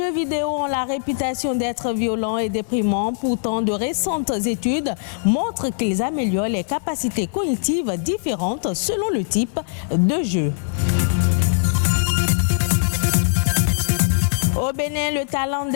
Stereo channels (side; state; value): right; silent; digital silence